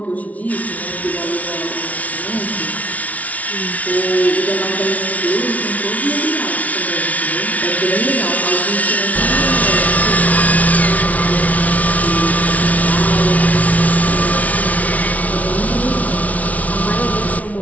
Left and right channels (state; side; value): late; right; 0.070 ms